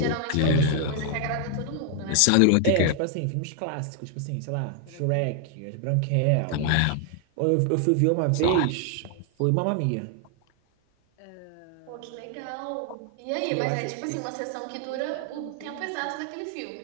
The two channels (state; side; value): different; both; correlation 0.00